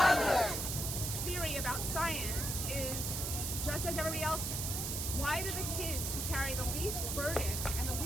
Theory about science is just as everybody else. Why do the kids who carry the least burden and the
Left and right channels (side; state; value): right; noise; hiss, 2 dB below the sound